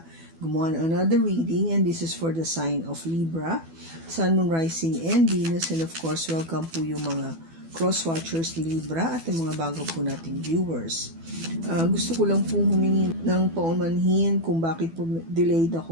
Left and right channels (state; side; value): late; left; 12 ms